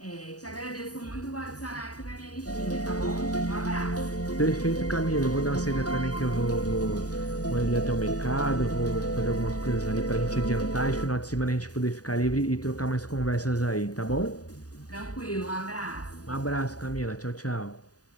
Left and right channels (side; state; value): right; late; 0.68 ms